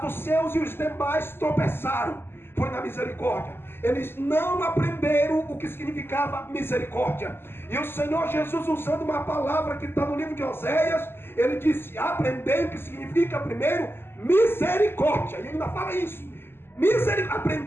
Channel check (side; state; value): right; late; 0.11 ms